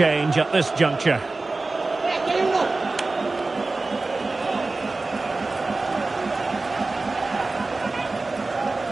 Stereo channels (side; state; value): left; quieter; 3.5 dB